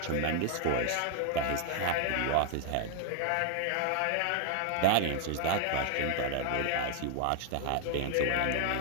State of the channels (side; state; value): both; different; correlation 0.00